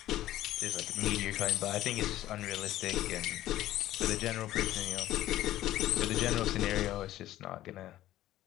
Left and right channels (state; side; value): quieter; right; 14.3 dB